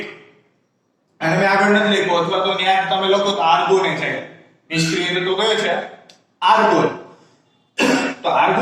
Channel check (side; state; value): both; identical; correlation 1.00